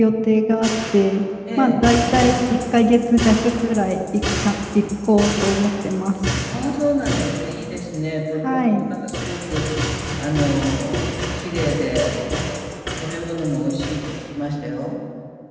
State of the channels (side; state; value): both; identical; correlation 1.00